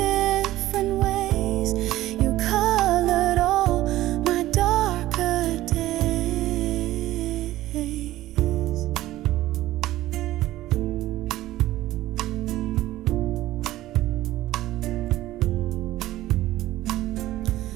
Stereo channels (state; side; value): quieter; left; 15.6 dB